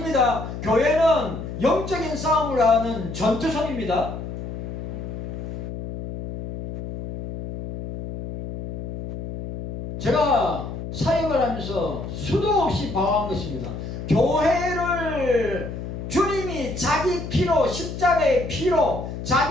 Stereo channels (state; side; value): noise; left; hum, 7 dB below the sound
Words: 교회는 영적인 싸움을 하는 전투선입니다. 제가 사역을 하면서 수도 없이 방황한 것입니다. 교회를 주님이 자기 피로, 십자가의 피로,